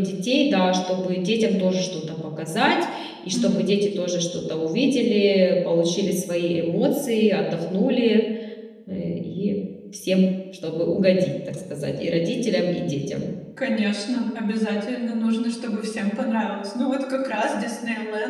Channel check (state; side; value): identical; both; correlation 1.00